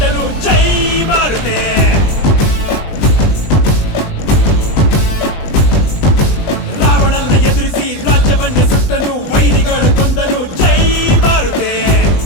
ಜೈ ಮಾರುತೆ ರಾವಣನ್ನ ಎದುರಿಸಿ ರಾಜ್ಯವನ್ನೇ ಸುಟ್ಟನು ವೈರಿಗಳು ಕೊಂದನು ಜೈ ಮಾರುತೆ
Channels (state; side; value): late; right; 20 ms